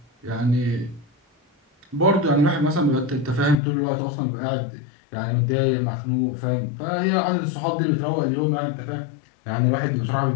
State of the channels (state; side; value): drops out; right; at 3.6 s